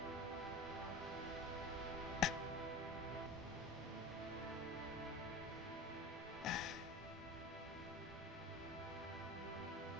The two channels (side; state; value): both; normal; correlation 0.32